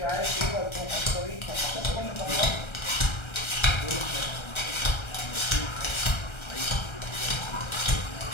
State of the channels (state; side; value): late; right; 1.3 ms